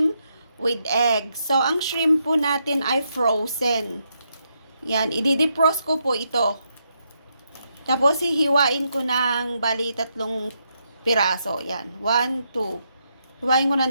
with egg. So, ang shrimp po natin ay frozen. Yan, i-defrost ko po ito. Tapos, hihiwain ko ng bali 3 piraso. Yan, 1, 2. Hiwain ko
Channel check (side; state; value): both; inverted; correlation -0.79